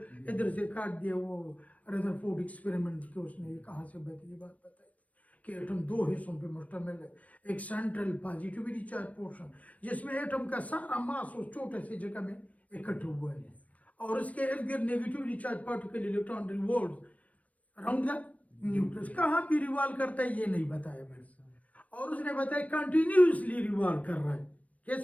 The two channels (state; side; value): late; right; 0.069 ms